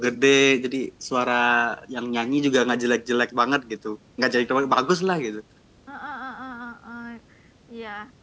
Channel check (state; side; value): identical; both; correlation 1.00